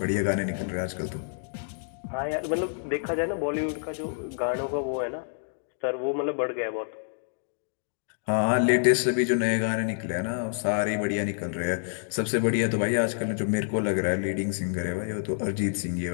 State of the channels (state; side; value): silent; right; digital silence